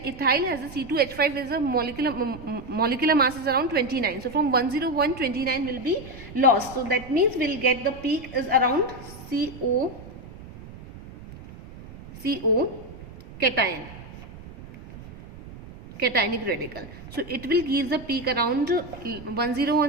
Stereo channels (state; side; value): noise; right; rumble, 16 dB below the sound